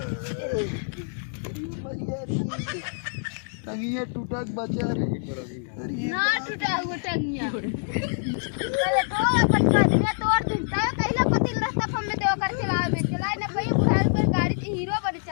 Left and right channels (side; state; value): right; silent; digital silence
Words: टंगिया टूटा बचा रे ना टूटा हुआ टंगिया पहले तो पटका दिया तोड़ दिलता है कहिला पति रास्ता हमने देव कर चलाए ने भाई बुढ़ाई पर गाड़ी की हीरो बड़ी